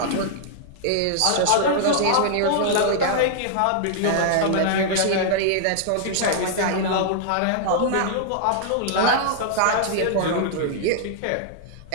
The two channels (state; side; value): different; both; correlation -0.01